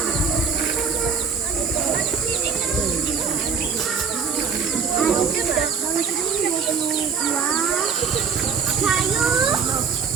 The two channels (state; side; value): quieter; left; 5.9 dB